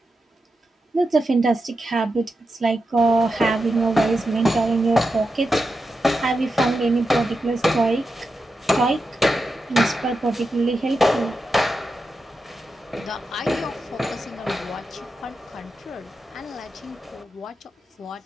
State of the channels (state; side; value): normal; both; correlation 0.89